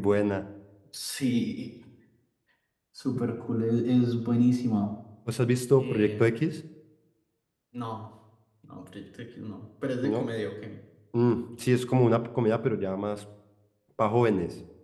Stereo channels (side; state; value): both; identical; correlation 1.00